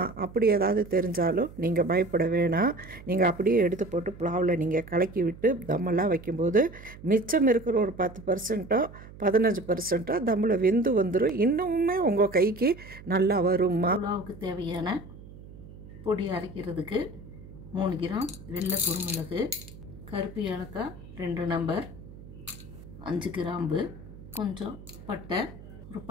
அப்படி ஏதாவது தெரிஞ்சாலும் நீங்கள் பயப்பட வேணாம். நீங்கள் அப்படியே எடுத்து போட்டு புலாவில் நீங்கள் கலக்கி விட்டு தம்மெல்லாம் வைக்கும்போது மிச்சம் இருக்கிற ஒரு 10%ஓ 15%ஓ தம்மில் வெந்து வந்துடும். இன்னுமே உங்கள் கைக்கு நல்லா வரும்மா. புலாவுக்கு தேவையான பொடி அரைக்கிறதுக்கு 3 கிராம் வெள்ளை குருமிளகு, கருப்பு ஏலக்காய் 2 நம்பர், 5 கிராம்பு, கொஞ்சம் பட்டை, ஒரு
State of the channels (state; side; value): noise; right; hum, 17 dB below the sound